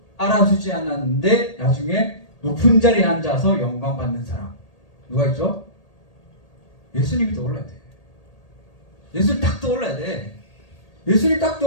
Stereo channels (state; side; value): late; right; 1.8 ms